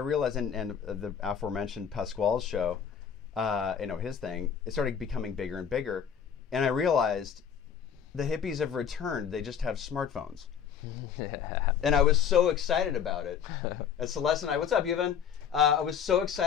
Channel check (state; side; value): quieter; right; 7.8 dB